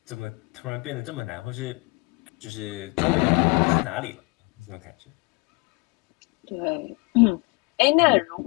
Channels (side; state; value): right; quieter; 28.1 dB